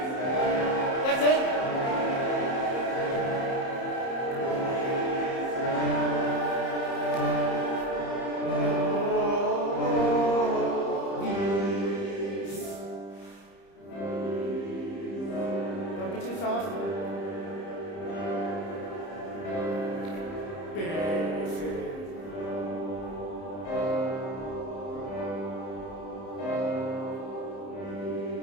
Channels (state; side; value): late; right; 30 ms